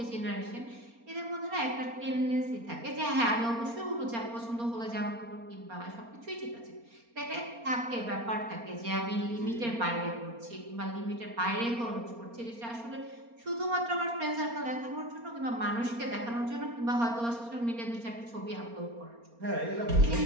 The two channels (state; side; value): late; left; 4.3 ms